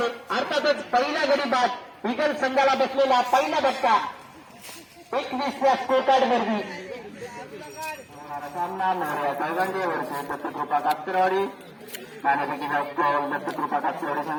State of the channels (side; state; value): both; identical; correlation 1.00